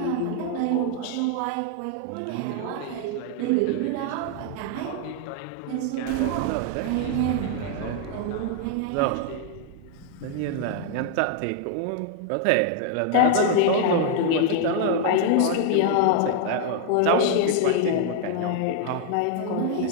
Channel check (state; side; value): different; both; correlation 0.00